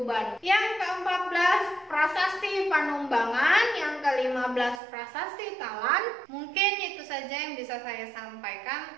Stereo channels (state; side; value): drops out; left; at 4.8 s